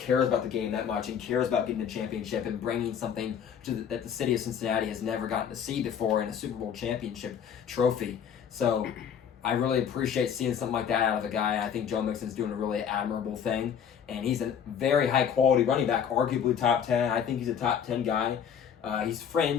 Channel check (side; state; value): right; quieter; 8.0 dB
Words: about the game that much and cares about getting a championship and bringing something that the city of Cincinnati has never gotten to see before in a Super Bowl championship trophy. So I really appreciate seeing something like that out of a guy. I think Joe Mixon's doing a really admirable thing, and he's a very high-quality running back, arguably top 10. I think he's a top 10 guy. He's